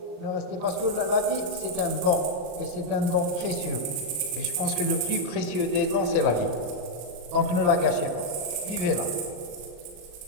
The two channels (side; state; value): left; late; 34 ms